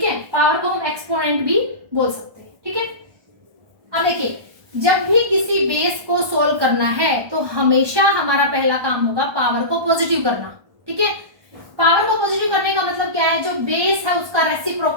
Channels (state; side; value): late; left; 1.2 ms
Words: है। पावर को हम एक्सपोनेंट भी बोल सकते हैं, ठीक है। अब देखिए, जब भी किसी बेस को सोल्व करना है तो हमेशा हमारा पहला काम होगा पावर को पॉजिटिव करना, ठीक है। पावर को पॉजिटिव करने का मतलब क्या है, जो बेस है उसका